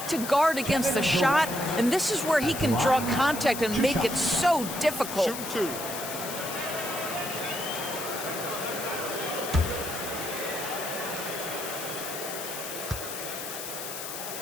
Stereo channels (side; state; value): left; noise; hiss, 7 dB below the sound